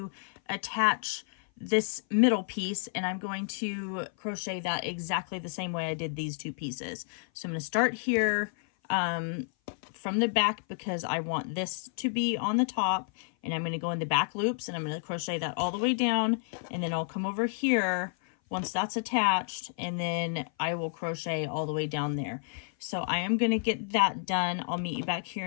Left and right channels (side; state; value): right; silent; 56 dB below the other